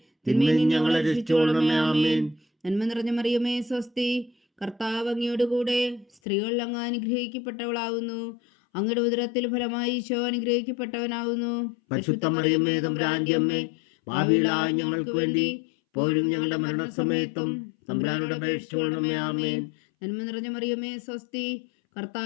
തിന്മയിൽ നിന്ന് ഞങ്ങളെ രക്ഷിച്ചുകൊള്ളണമേ. ആമേൻ. നന്മ നിറഞ്ഞ മറിയമേ സ്വസ്തി, കർത്താവ് അങ്ങയോടുകൂടെ സ്ത്രീകൾ അങ്ങ് അനുഗ്രഹിക്കപ്പെട്ടവളാകുന്നു. അങ്ങയുടെ ഉദരത്തിൽ ഫലമായി ഈശോ അനുഗ്രഹിക്കപ്പെട്ടവനാകുന്നു. പരിശുദ്ധ മറിയമേ തമ്പുരാന്റെ അമ്മേ, പാപികളായ ഞങ്ങൾക്ക് വേണ്ടി ഇപ്പോഴും ഞങ്ങളുടെ മരണസമയത്തും തമ്പുരാനോട് അപേക്ഷിച്ചുകൊള്ളണമേ. ആമേൻ. നന്മ നിറഞ്ഞ മറിയമേ സ്വസ്തി,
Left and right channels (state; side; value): drops out; right; at 6.2 s